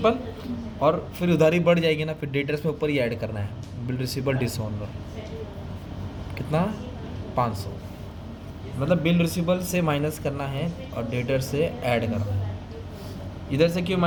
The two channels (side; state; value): both; identical; correlation 1.00